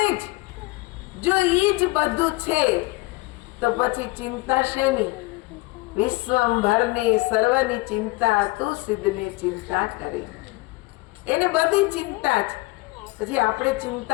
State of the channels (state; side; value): quieter; right; 22.6 dB